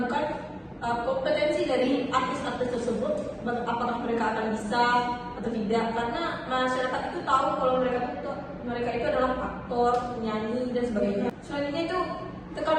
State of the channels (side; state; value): both; identical; correlation 1.00